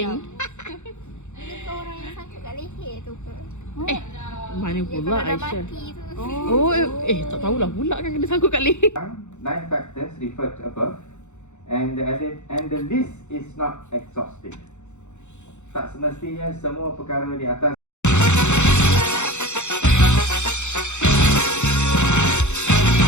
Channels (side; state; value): right; late; 0.83 ms